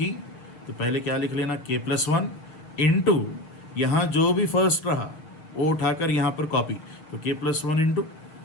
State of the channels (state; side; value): late; right; 6.4 ms